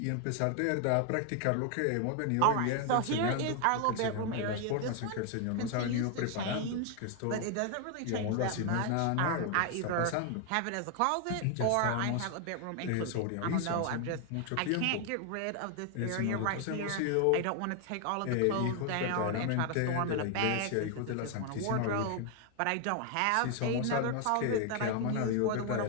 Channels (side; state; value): both; different; correlation 0.00